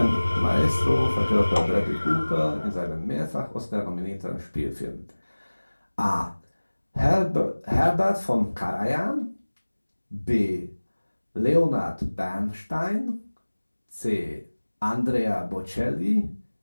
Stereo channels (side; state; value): both; inverted; correlation -1.00